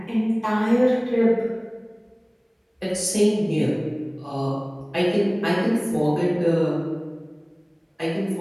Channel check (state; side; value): identical; both; correlation 1.00